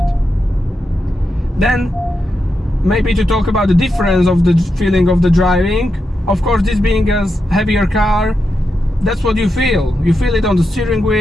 Then, maybe to talk about the difference of the feeling of the driving. Of course, this being a heavier car, that's what you feel. You feel it on the steering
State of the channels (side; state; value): both; normal; correlation 0.86